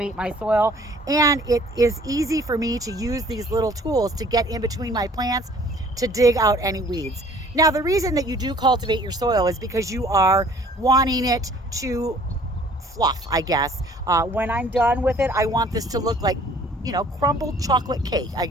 my soil. And it is easy for me to use these little tools to get in between my plants to dig out any weeds. Now, the reason that you do cultivate your soil is because you are wanting it to fluff, I guess. When I'm done with it, I want this to look like, crumbled chocolate cake, I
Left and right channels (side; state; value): both; normal; correlation 0.54